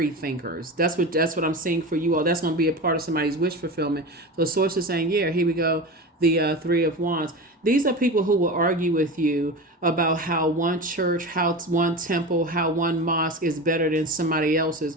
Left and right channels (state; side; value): normal; both; correlation 0.27